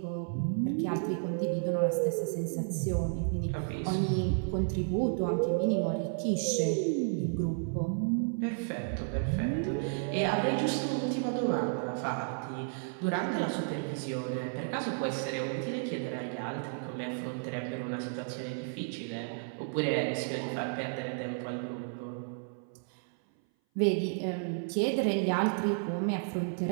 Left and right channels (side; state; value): left; silent; 56 dB below the other